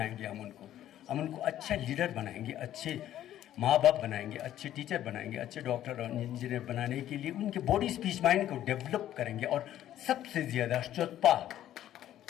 हम उनको अच्छा लीडर बनाएंगे, अच्छे माँ बाप बनाएंगे, अच्छे टीचर बनाएंगे, अच्छे डॉक्टर और इंजीनियर बनाने के लिए उनके बॉडी स्पीच माइंड को डेवलप करेंगे। और सबसे ज़्यादा चौथा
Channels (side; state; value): right; quieter; 12.2 dB